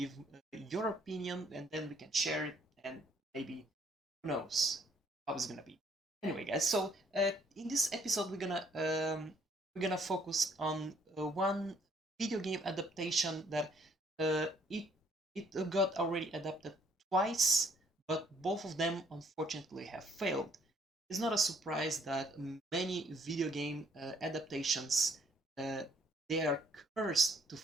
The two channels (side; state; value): both; normal; correlation 0.64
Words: your opinion, and then we can share it, and maybe who knows how it's gonna be. Anyway, guys. In this episode, we're gonna focus on one video game adaptation that uh, it it got already adapted twice, but both of them unfortunately have failed. It's not a surprise that many video game adaptations uh, they are cursed to